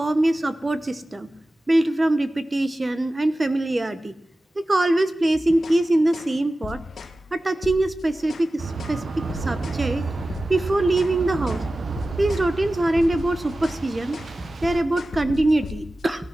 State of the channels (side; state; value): both; normal; correlation 0.95